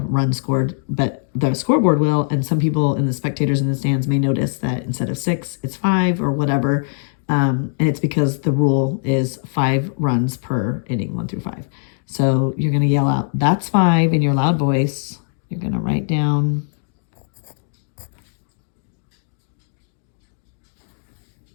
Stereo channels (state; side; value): silent; right; 65 dB below the other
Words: scored, but the scoreboard will. And some people and the spectators in the stands may notice that instead of 6, it's 5 or whatever. And it's because the rule is 5 runs per inning, 1 through 5. So you're going to yell out, "That's 5" in your loud voice. You're going to write down